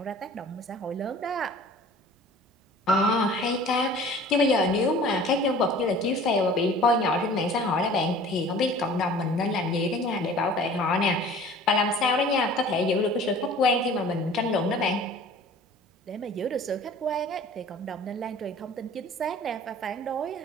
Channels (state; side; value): normal; both; correlation 0.46